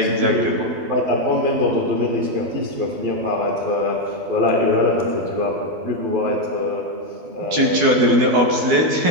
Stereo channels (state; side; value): late; left; 12 ms